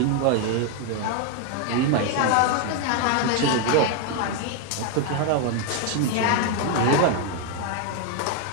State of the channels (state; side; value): different; both; correlation 0.01